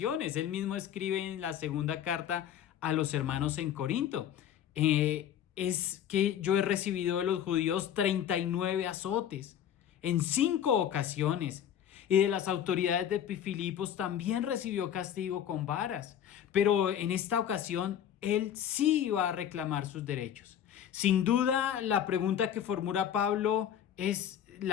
Él mismo escribe en la segunda carta a los hermanos en Corinto: es que yo he recibido de los judíos 39 azotes en 5 ocasiones. Y de las autoridades de Filipos también recibió castigo con varas. Pero en esta ocasión él sí iba a reclamar sus derechos. Sin duda, la pregunta que formula Pablo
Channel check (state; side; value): quieter; right; 9.8 dB